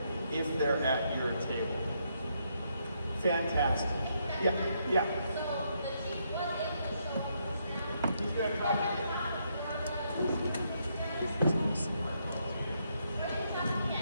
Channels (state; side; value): inverted; both; correlation -0.76